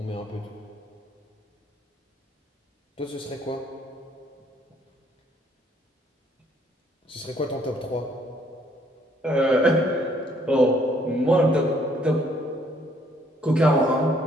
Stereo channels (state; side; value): normal; both; correlation 0.66